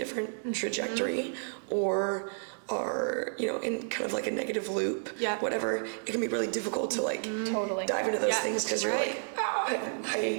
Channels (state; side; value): silent; left; digital silence